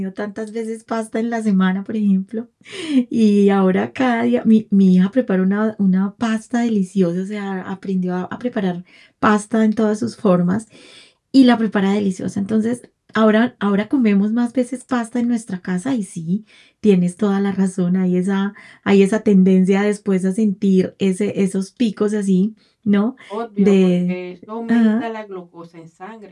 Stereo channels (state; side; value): identical; both; correlation 1.00